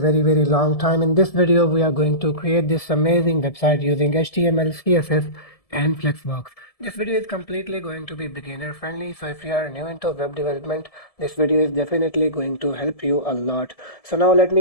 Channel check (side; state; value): right; late; 1.7 ms